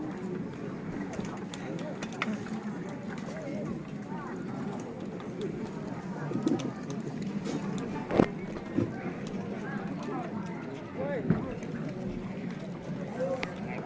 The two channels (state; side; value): identical; both; correlation 1.00